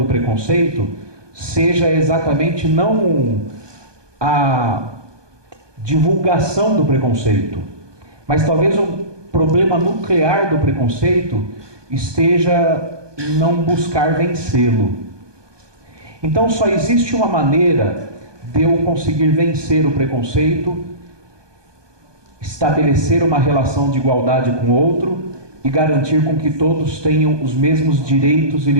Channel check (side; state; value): left; late; 1.2 ms